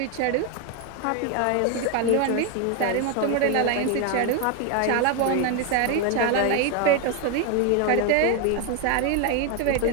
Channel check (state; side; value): different; both; correlation 0.01